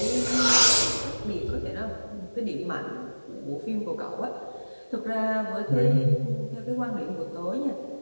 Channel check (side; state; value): both; inverted; correlation -1.00